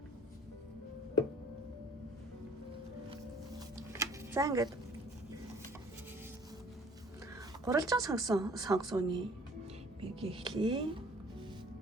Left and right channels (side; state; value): both; normal; correlation 0.54